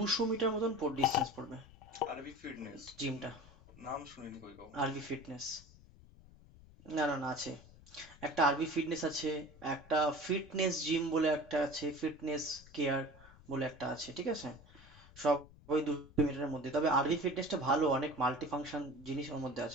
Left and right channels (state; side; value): noise; left; rumble, 22 dB below the sound